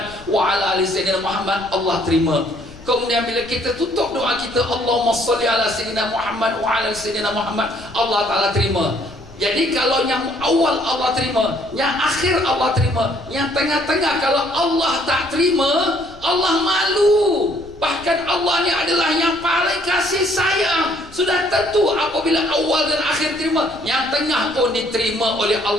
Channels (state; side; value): noise; left; rumble, 22 dB below the sound